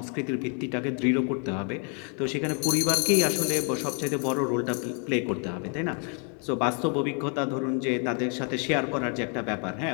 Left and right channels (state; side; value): quieter; right; 39.8 dB